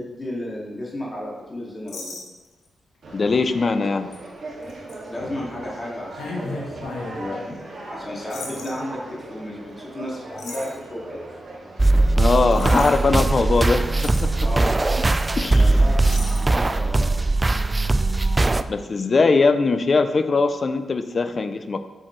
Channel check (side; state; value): both; normal; correlation 0.92